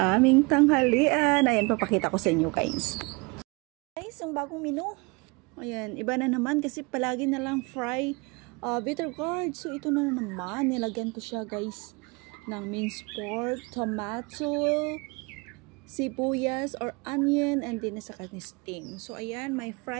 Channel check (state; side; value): quieter; left; 28.1 dB